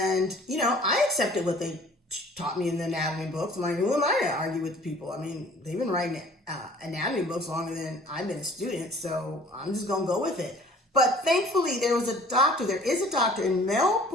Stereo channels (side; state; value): both; normal; correlation 0.52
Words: I accepted what they taught me in the anatomy books. I'm like, who am I to argue with people? I mean, they've been writing anatomy books longer than I've been a student, so I'm just gonna go with it. But thankfully, there is a doctor in